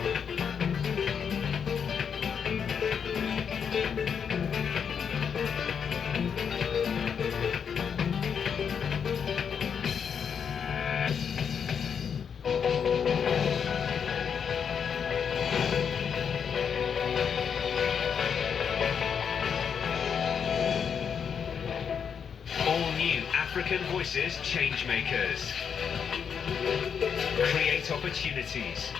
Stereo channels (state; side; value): quieter; right; 7.1 dB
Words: African Voices Changemakers. Create opportunities.